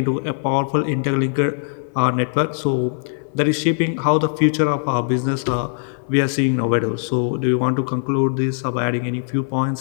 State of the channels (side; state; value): right; silent; 65 dB below the other